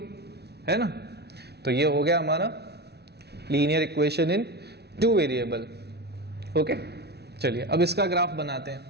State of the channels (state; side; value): late; left; 0.48 ms